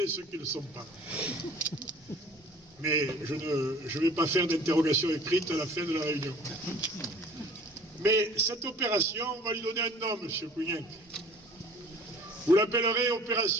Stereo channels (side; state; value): both; normal; correlation 0.49